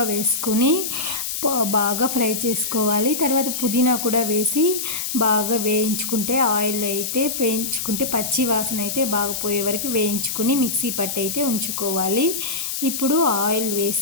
వేసుకొని బాగా ఫ్రై చేసుకోవాలి. తర్వాత పుదీనా కూడా వేసి బాగా వేయించుకుంటే ఆయిల్ అయితే వేయించుకుంటే పచ్చి వాసన అయితే బాగా పోయే వరకు వేయించుకొని మిక్సీ పట్టి అయితే ఉంచుకోవాలి. ఇప్పుడు ఆయిల్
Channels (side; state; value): left; noise; hiss, 3 dB below the sound